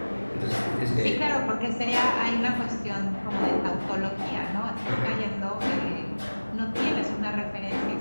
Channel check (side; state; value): both; inverted; correlation -1.00